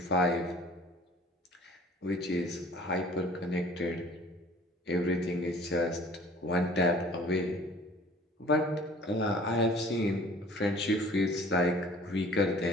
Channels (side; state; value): both; normal; correlation 0.50